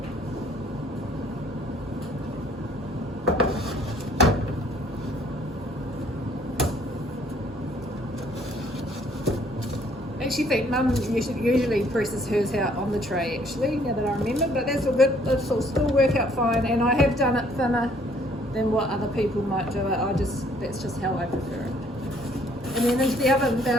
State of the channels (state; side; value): normal; both; correlation 0.62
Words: I actually think Mum usually presses hers out on the tray actually, now that I remember, but that's all good. This will still work out fine, and I have done it thinner than what other people might do it. That's just how I prefer it. And then into the oven